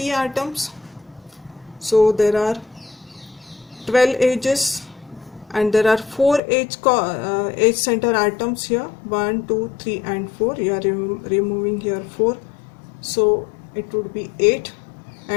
atoms. So there are 12 edges and there are 4 edge center atoms here, 1, 2, 3 and 4. You are removing here 4. So it would be 8,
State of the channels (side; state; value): right; drops out; at 6.4 s